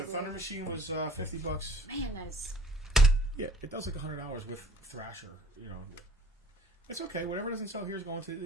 Thunder Machine was 50 bucks. Man, that is. Yeah, it does like $100 with Thrasher. You know, it's okay. Whatever doesn't sell here is going to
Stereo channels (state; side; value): normal; both; correlation 0.53